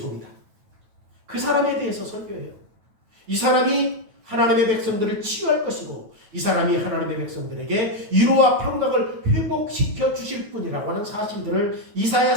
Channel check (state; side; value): late; left; 9.2 ms